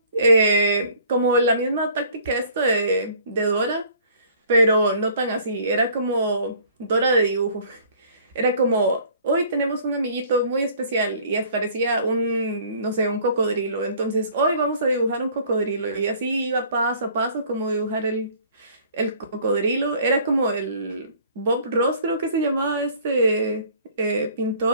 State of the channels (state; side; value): inverted; both; correlation -0.54